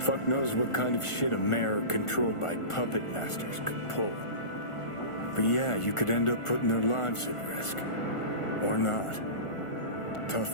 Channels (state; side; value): late; right; 1.4 ms